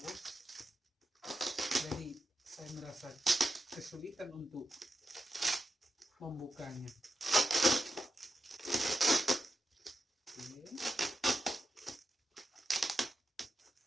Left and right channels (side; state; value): both; normal; correlation 0.90